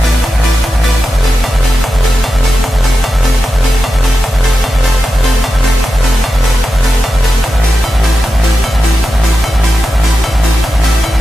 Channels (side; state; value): both; normal; correlation 0.91